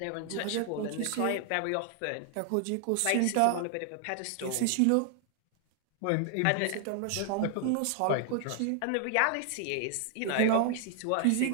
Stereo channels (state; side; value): different; both; correlation 0.00